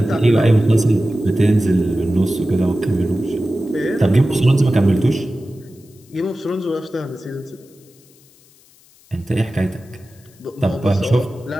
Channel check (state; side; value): noise; left; hiss, 29 dB below the sound